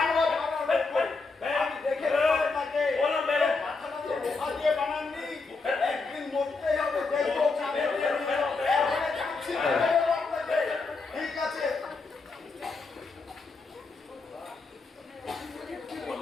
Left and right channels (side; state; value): right; quieter; 4.0 dB